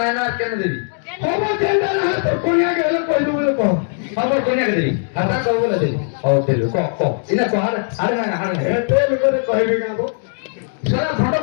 না আর কেন দিবি খবর চেন্ডা না তো কোনিয়া গেলে কই দিবি বলে কহ খবর কোনিয়াকে দিবি আর তা কব বলে দিবি ও দিলু ক ক ইনা ক আরে না আরে না এ তেল করে কইবি কাবো সারা ফটো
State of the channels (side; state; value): right; silent; digital silence